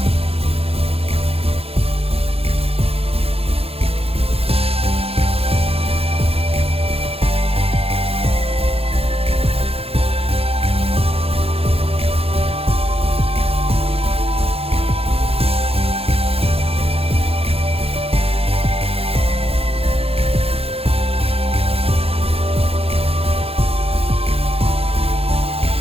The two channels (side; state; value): left; late; 0.28 ms